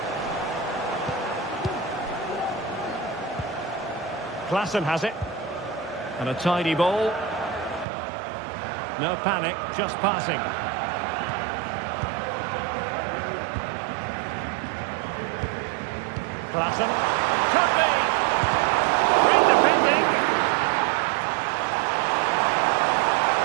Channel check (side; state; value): left; drops out; at 7.9 s